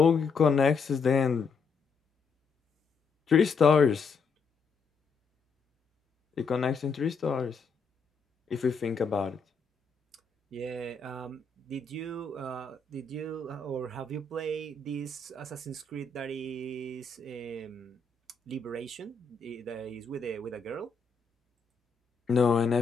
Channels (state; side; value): quieter; right; 4.7 dB